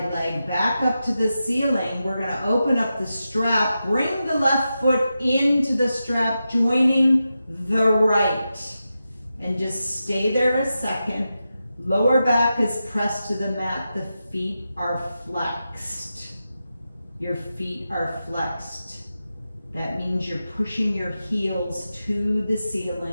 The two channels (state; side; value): inverted; both; correlation -0.90